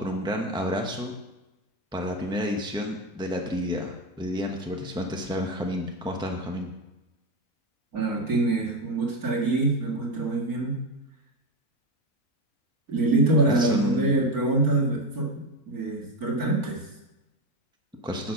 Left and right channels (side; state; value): both; normal; correlation 0.15